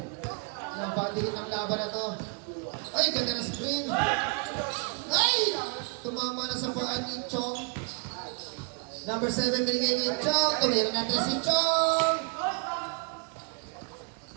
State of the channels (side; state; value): left; quieter; 36.4 dB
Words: Napatigin ang laban na to. Ay, ganda na screen. Ay! Tumama na sa paan ni Chong. Number 7, binigay ni Chong. Tumira na si Chong.